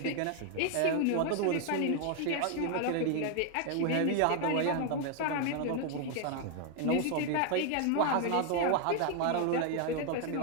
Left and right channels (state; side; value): different; both; correlation 0.00